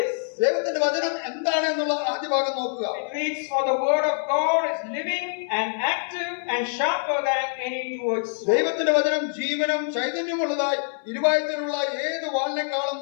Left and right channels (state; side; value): silent; right; 62 dB below the other